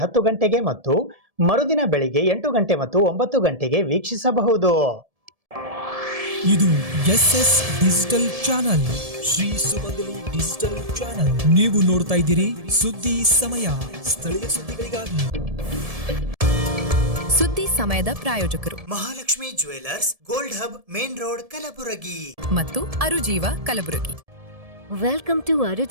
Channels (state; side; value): late; left; 1.7 ms